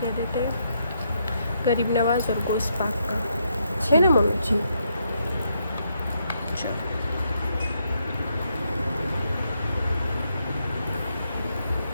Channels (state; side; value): inverted; both; correlation -0.77